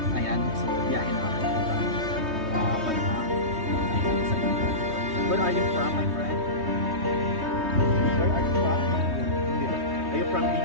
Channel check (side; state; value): left; late; 3.2 ms